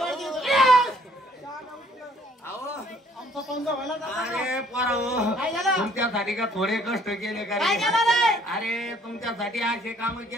आमचा पंजा व्हायला अरे पोरा काय झालं? तुमच्यासाठी का थोडे कष्ट केले का काय रे? झालं रे? अरे तुमच्यासाठी असे काम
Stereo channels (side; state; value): both; normal; correlation 0.61